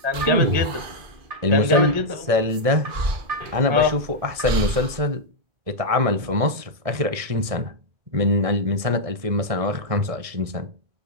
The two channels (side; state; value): left; late; 1.6 ms